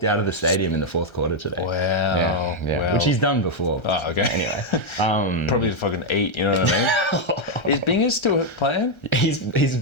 out of the stadium in the fourth quarter today. Wow. Yeah. Wow. Which he's done before. Oh, okay. Anyway. Probably to fucking eat, you know what I mean? Is Bingers still playing?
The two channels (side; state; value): right; late; 1.3 ms